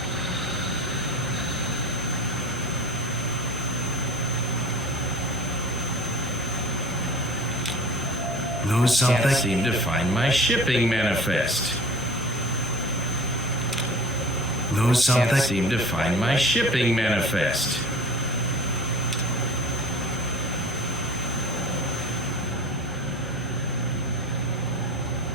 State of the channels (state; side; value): normal; both; correlation 0.40